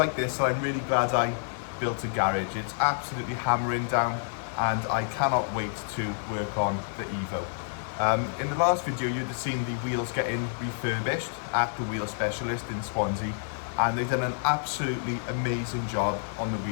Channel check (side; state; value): right; silent; 59 dB below the other